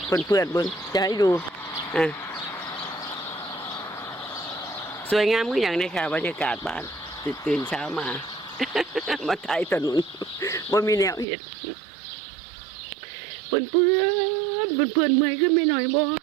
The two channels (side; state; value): left; drops out; at 11.2 s